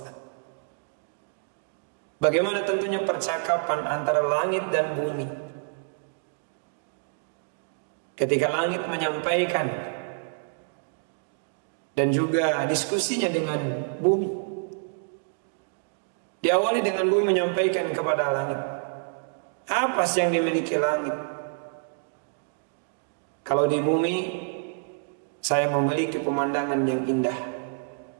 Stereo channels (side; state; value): left; silent; digital silence